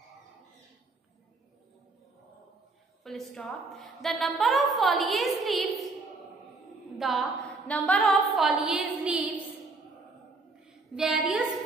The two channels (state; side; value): quieter; left; 3.6 dB